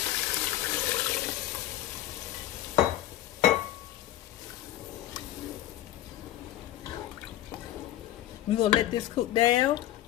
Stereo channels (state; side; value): quieter; right; 13.6 dB